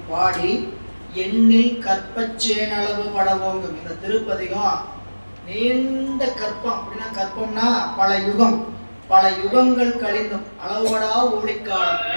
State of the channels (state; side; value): inverted; both; correlation -1.00